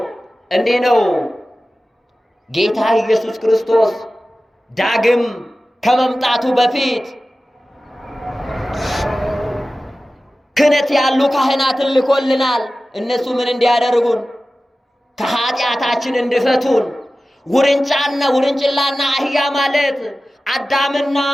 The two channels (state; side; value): normal; both; correlation 0.96